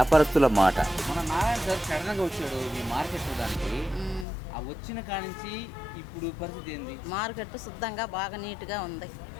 మాట. మన నారాయణ సార్ సడన్గా వచ్చాడు మీ మార్కెట్ చూడడానికి. ఆ వచ్చిన కానించి ఇప్పుడు పరిస్థితి ఏంది? మార్కెట్ శుద్ధంగా బాగా నీట్గా ఉంది,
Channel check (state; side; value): drops out; right; at 4.2 s